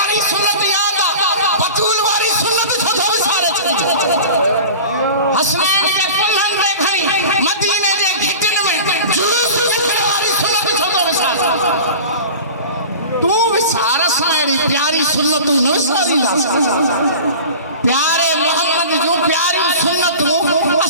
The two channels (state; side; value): inverted; both; correlation -0.36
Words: सुन्नत यादि आहे बतूल वारी सुन्नत छो थो विसारे हसनैन जे कुल्हनि में खणी मदीने जे घिटिन में जुलूस रखण वारी सुन्नत छो थो विसारे तू विसार सां अहिड़ी प्यारी सुन्नतूं न विसारींदासीं प्यारे मोहम्मद जूं प्यारियूं सुन्नतूं